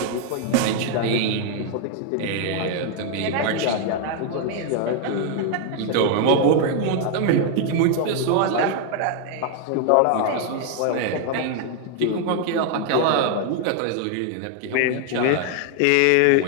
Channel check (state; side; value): different; both; correlation 0.00